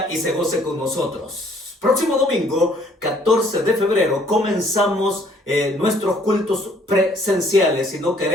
y se goce con nosotros. Próximo domingo, 14 de febrero, comenzamos nuestros cultos presenciales y no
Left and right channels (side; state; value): both; normal; correlation 0.62